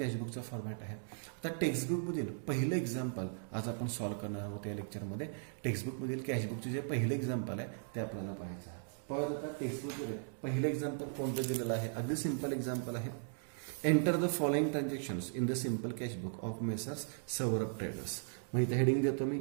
फॉर्मॅट आहे. आता टेक्स्टबुकमधील पहिलं एक्झाम्पल आज आपण सॉल्व्ह करणार आहोत या लेक्चरमध्ये. टेक्स्टबुकमधील कॅशबुकचे जे पहिलं एक्झाम्पल आहे ते आपल्याला पाहायचं आहे. परत आता टेक्स्टबुकमध्ये पहिलं एक्झाम्पल कोणतं दिलेलं आहे, अगदी सिंपल एक्झाम्पल आहे. Enter the following transactions in the simple cashbook of Messrs Saurabh traders. मग इथे हेडिंग देतो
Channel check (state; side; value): silent; left; digital silence